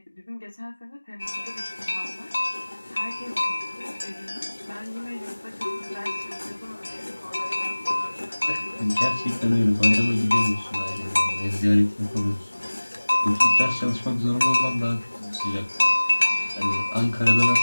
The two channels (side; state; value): both; inverted; correlation -1.00